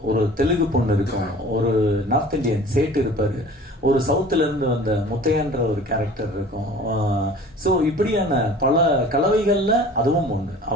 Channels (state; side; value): normal; both; correlation 0.44